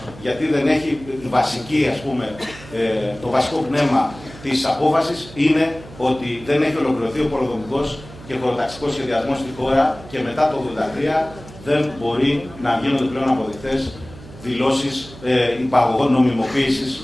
γιατί δεν έχει τη βασική, το βασικό πνεύμα της απόφασης είναι ότι δεν έχει ολοκληρωθεί ο πολεοδομικός και χωροταξικός σχεδιασμός στη χώρα και μετά το 1983 δεν μπορεί να γίνονται πλέον αποδεκτές δηλώσεις υπαγωγών νομιμοποίησης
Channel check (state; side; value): noise; right; hum, 18 dB below the sound